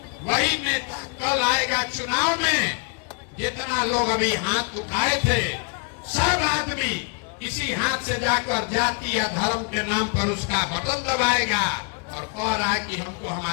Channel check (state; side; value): quieter; right; 34.3 dB